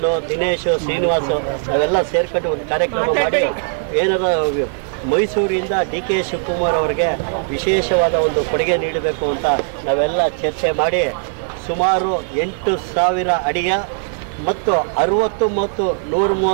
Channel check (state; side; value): silent; left; digital silence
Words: ದಿನೇಶ್, ಶ್ರೀನಿವಾಸ್ ಅವೆಲ್ಲ ಸೇರ್ಕೊಂಡು ಒಂದು ಕಾರ್ಯಕ್ರಮ ಮಾಡಿ ಏನಾರ ಮೈಸೂರಿಂದ ಡಿ ಕೆ ಶಿವಕುಮಾರ್ ಅವರಿಗೆ ವಿಶೇಷವಾದ ಒಂದು ಕೊಡುಗೆ ನೀಡಬೇಕು ಅಂತ ನಾವೆಲ್ಲ ಚರ್ಚೆ ಮಾಡಿ ಸುಮಾರು 8,000 ಅಡಿಯ ಮತ್ತು 60 ಮತ್ತು